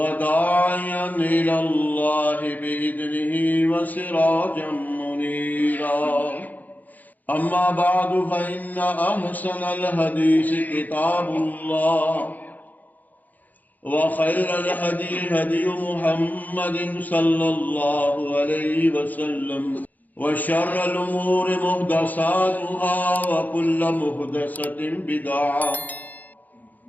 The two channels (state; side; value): late; right; 0.082 ms